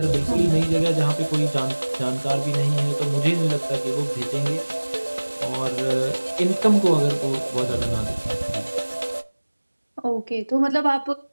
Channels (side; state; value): both; inverted; correlation -1.00